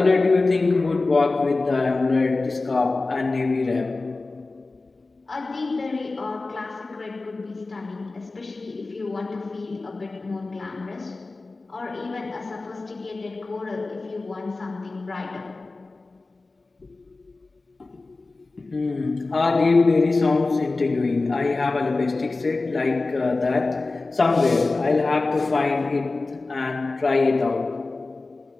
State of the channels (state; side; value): quieter; right; 3.5 dB